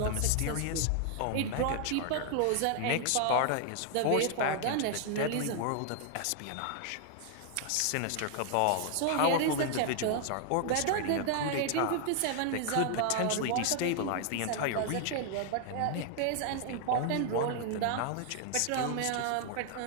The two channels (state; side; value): different; both; correlation 0.00